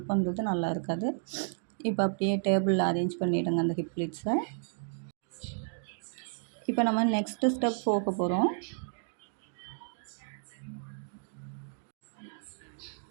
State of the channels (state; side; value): silent; left; digital silence